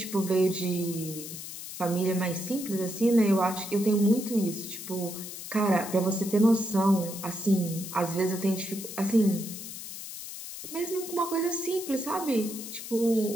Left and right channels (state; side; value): noise; left; hiss, 10 dB below the sound